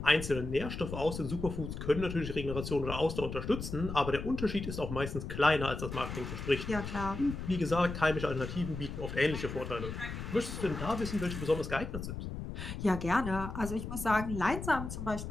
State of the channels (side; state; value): left; noise; rumble, 7 dB below the sound